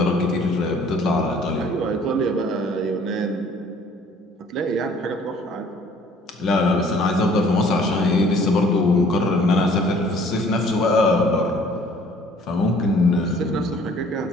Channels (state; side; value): normal; both; correlation 0.55